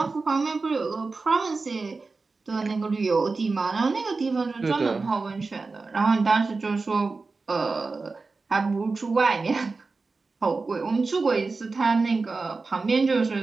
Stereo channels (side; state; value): left; quieter; 4.0 dB